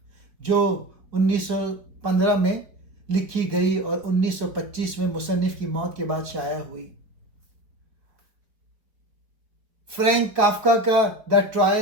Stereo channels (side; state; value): left; late; 4.3 ms